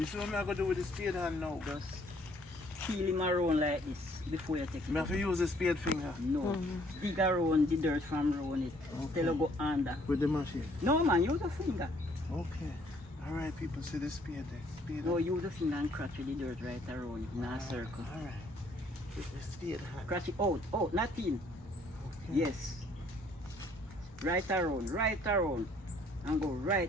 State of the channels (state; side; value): normal; both; correlation 0.63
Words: see what me I go do with the spade hand now? Just peel him around like this before you take it Me have out. to use the spade finger No, dig around the dirt from around it. Till you go under. with the machine. No man, use a finger. Okay. Alright, people see the spade there. Spade. No, use a finger and scratch with the dirt right around it in a circle. Alright. With the spade hand. Scratch it out, not in. Yes. Right around. And go